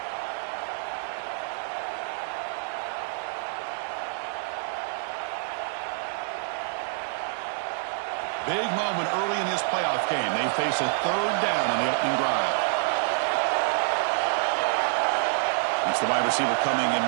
Big moment early in this playoff game. They face a 3rd down on the opening drive. It's the wide receiver coming in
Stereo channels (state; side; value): silent; left; digital silence